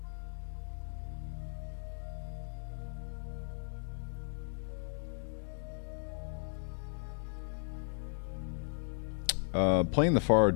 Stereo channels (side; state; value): right; silent; digital silence